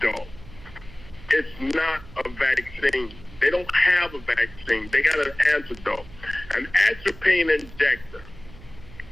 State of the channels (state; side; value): noise; right; hum, 19 dB below the sound